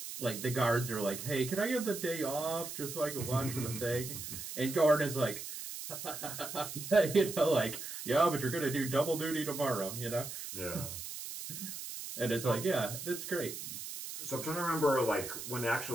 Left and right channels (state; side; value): noise; right; hiss, 8 dB below the sound